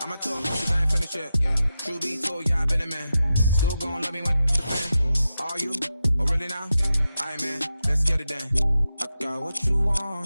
I'ma talk cause I ain't finished yet. True be told, yeah, I been a man. Still gon' love me when the fan. Are you? Oh really now? Aight man, let's get it done. I got what you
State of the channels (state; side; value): inverted; both; correlation -0.90